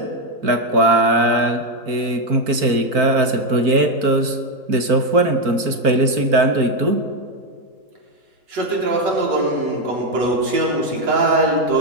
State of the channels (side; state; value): left; late; 4.5 ms